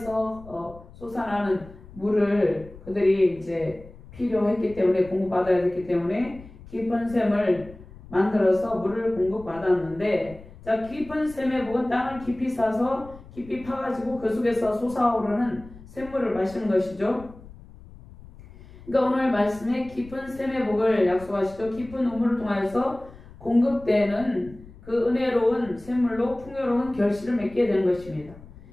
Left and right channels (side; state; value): left; noise; rumble, 19 dB below the sound